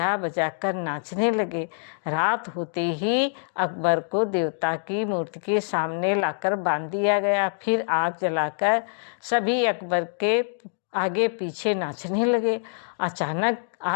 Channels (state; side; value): silent; right; digital silence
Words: बजा कर नाचने लगे। रात होते ही अकबर को देवता की मूर्ति के सामने लाकर बांध दिया गया। फिर आग जलाकर सभी अकबर के आगे पीछे नाचने लगे। अचानक